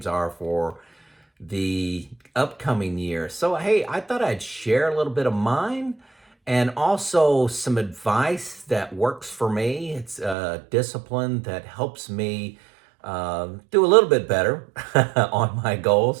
are for the upcoming year. So, hey, I thought I'd share a little bit of mine and also some advice that works for me. It's a discipline that helps me do a little bit better on my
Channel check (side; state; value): left; drops out; at 10.4 s